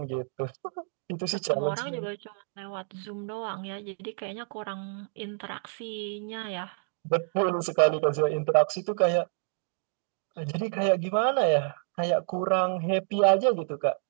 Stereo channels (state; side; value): silent; left; digital silence